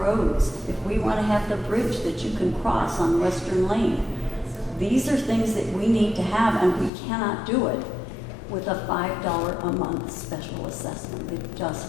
if we want to have the bridge that you can cross on Western Lane, these are things that we need to have, and we cannot do it with a $5 a month special assessment. It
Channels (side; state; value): right; drops out; at 6.9 s